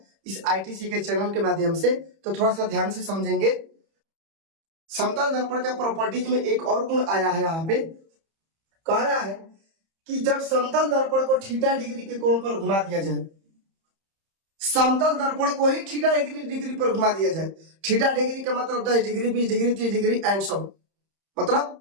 इस आईटीसी के चैनल के माध्यम से, तो थोड़ा सा ध्यान से समझेंगे। समतल दर्पण का प्रॉपर्टीज में एक और गुण आया है, यहाँ पे कह रहा है कि जब समतल दर्पण को थीटा डिग्री के कोण पर घुमा दिया जाए, समतल दर्पण को ही थीटा डिग्री पर घुमा दिया जाए। थीटा डिग्री का मतलब 10 degree, 20 degree, 30 degree and so, मतलब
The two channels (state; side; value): late; left; 31 ms